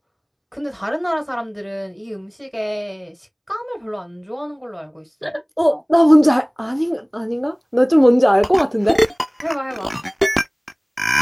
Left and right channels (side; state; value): both; identical; correlation 1.00